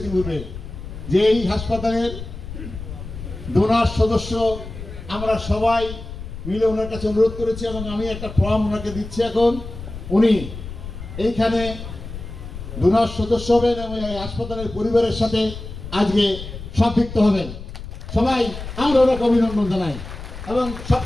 পূর্বে যে এই হাসপাতালের ডোনার সদস্য আমরা সবাই মিলে ওনার কাছে অনুরোধ করেছি এবং আমি একটা ফর্ম ওনাকে দিচ্ছি। এখন উনি এইখানে ডোনার সদস্য হবেন এবং এই হাসপাতালের পরিবারের সাথে আজকে সম্পৃক্ত হবেন। সবাই আমরা ওনাকে অভিনন্দন জানাই। এবং সব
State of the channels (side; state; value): left; noise; rumble, 11 dB below the sound